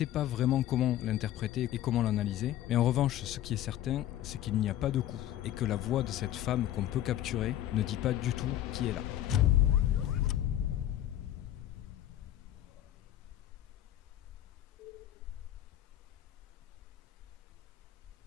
pas vraiment comment l'interpréter et comment l'analyser, mais en revanche, ce qui est certain, c'est qu'il n'y a pas de coup, et que la voix de cette femme qu'on peut capturer ne dit pas du tout qui est là.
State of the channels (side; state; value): right; quieter; 12.5 dB